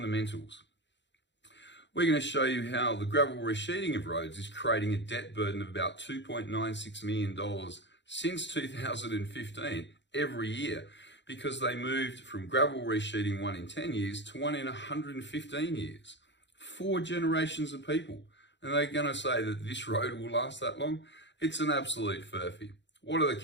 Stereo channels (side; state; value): right; late; 0.52 ms